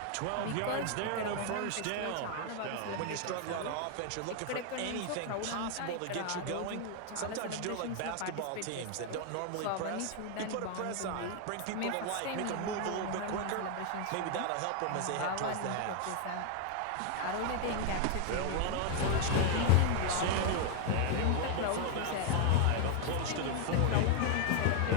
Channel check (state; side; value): different; both; correlation 0.00